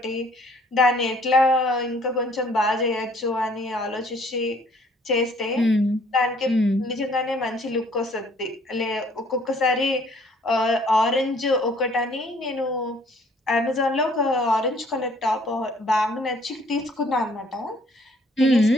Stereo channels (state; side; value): normal; both; correlation 0.59